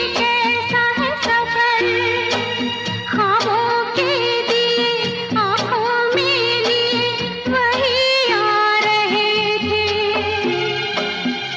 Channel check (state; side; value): identical; both; correlation 1.00